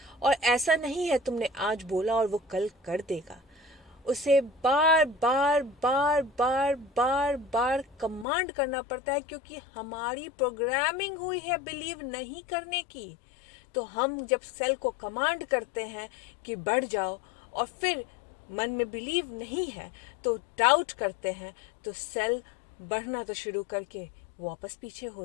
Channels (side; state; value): right; drops out; at 8.2 s